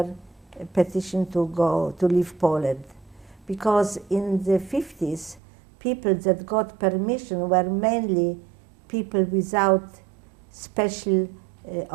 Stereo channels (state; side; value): drops out; left; at 5.4 s